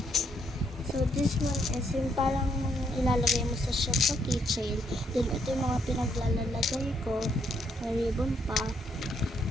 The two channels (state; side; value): normal; both; correlation 0.73